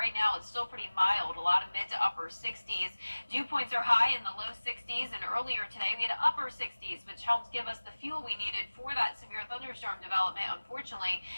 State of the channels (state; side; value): inverted; both; correlation -1.00